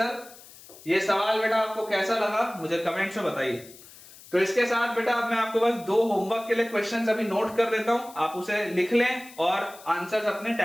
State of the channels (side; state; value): left; noise; hiss, 20 dB below the sound